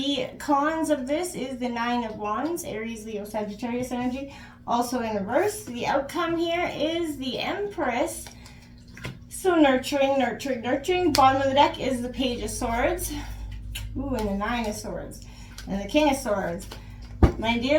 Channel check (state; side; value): identical; both; correlation 1.00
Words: cons of this is the Nine of Wands, Aries, Leo, Sagittarius energy, also in reverse. The outcome here is the Empress. So nurturing, nurturing, nurturing. Bottom of the deck is the Page of Swords. Ooh, and the Nine of Swords. And the King of Swords. My